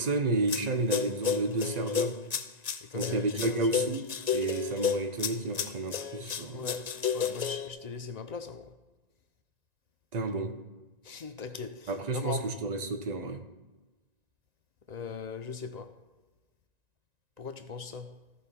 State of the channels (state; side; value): late; left; 1.9 ms